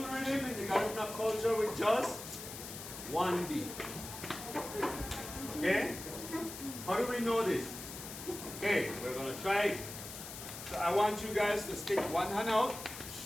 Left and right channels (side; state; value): left; noise; hiss, 10 dB below the sound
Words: rhythm in the Garifuna culture with just one beat. Okay? How do we know this? Okay, we're going to try it. So I want you guys to stick one hand out